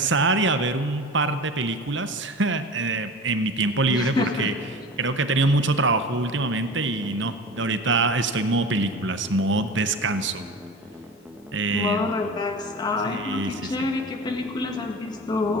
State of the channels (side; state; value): both; normal; correlation 0.33